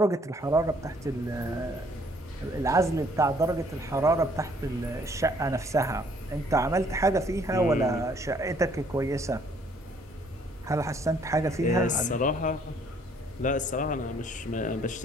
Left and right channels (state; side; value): normal; both; correlation 0.62